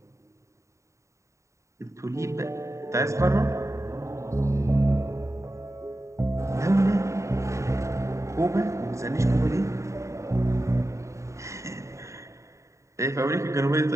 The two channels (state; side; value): late; left; 0.14 ms